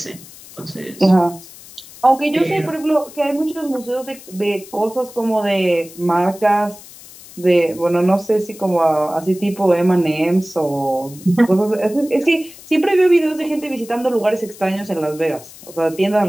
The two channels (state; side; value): noise; left; hiss, 19 dB below the sound